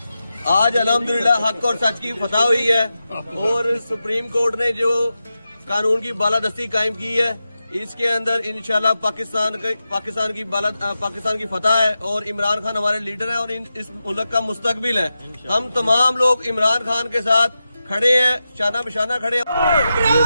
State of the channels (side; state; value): both; inverted; correlation -0.91